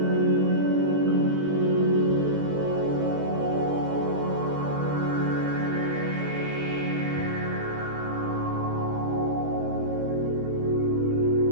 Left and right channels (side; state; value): left; late; 20 ms